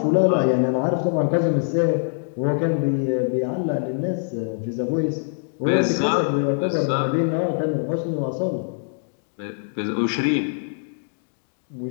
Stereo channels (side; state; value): right; silent; digital silence